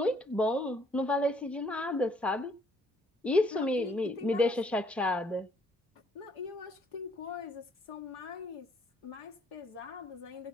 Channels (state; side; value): normal; both; correlation 0.66